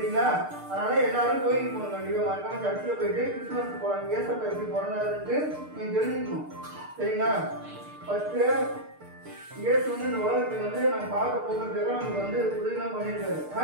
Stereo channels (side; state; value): left; late; 6.6 ms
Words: அதனால எல்லாரும் கோயிலுக்கு போகணும். கண்டிப்பா மறக்காம சர்ச்சில் போயிட்டு கிறிஸ்துமஸ் போறாங்க. ஏசப்பா எப்படி போறாருன்ட்டு நீங்க தெரிஞ்சுக்கணும். சரிங்களா? ஃபர்ஸ்ட் இயேசு வந்து இந்த உலகத்துக்கு வந்து நம்ம பார்க்க போகிறதுக்காக நமக்கு வந்து உதவிலாம் பண்ணியிருக்காரு.